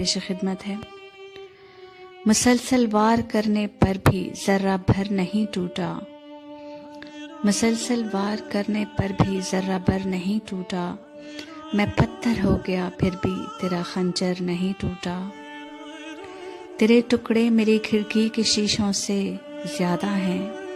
خدمت ہے۔ مسلسل وار کرنے پر بھی ذرہ بھر نہیں ٹوٹا، مسلسل وار کرنے پر بھی ذرہ بھر نہیں ٹوٹا، میں پتھر ہو گیا پھر بھی تیرا خنجر نہیں ٹوٹا، تیرے ٹکڑے میری کھڑکی کے شیشوں سے زیادہ ہیں،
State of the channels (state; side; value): identical; both; correlation 1.00